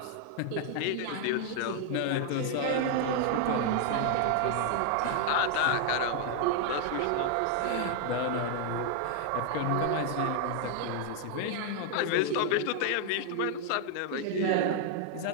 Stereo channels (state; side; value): different; both; correlation 0.00